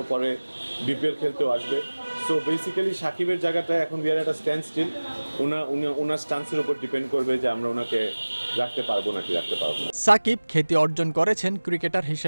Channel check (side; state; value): both; inverted; correlation -1.00